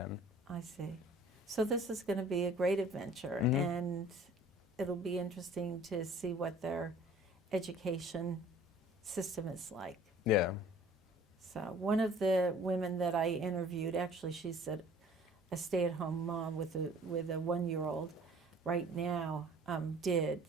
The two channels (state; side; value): normal; both; correlation 0.50